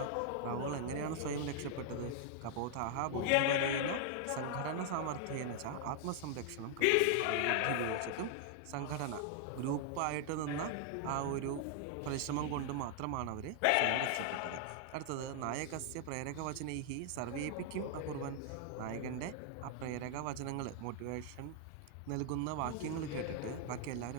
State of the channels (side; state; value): both; different; correlation -0.01